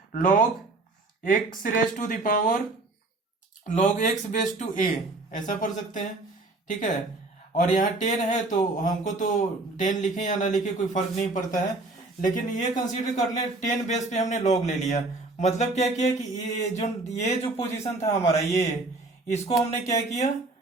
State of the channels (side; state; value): left; quieter; 3.1 dB